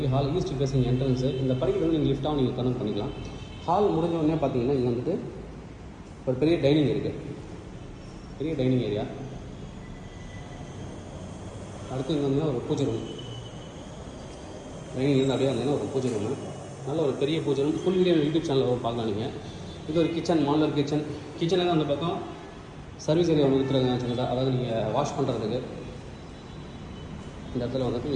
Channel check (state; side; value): identical; both; correlation 1.00